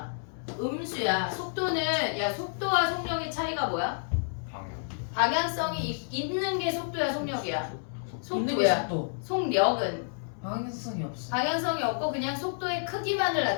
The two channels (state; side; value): silent; right; 57 dB below the other